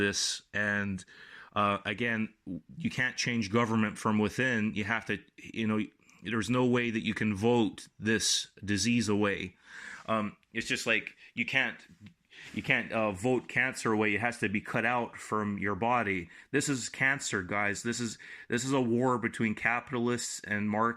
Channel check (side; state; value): both; identical; correlation 1.00